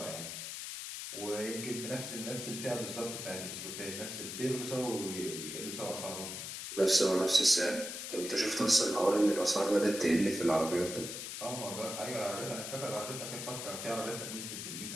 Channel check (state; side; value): noise; left; hiss, 7 dB below the sound